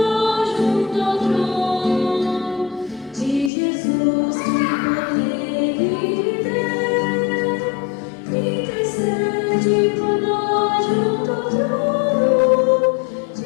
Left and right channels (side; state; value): right; drops out; at 3.5 s